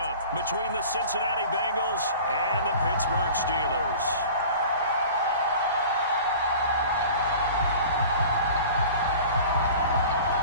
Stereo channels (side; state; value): both; inverted; correlation -0.42